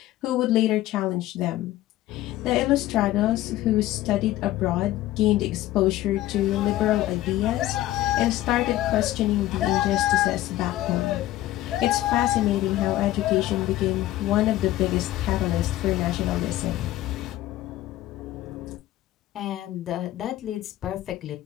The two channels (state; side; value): quieter; right; 15.0 dB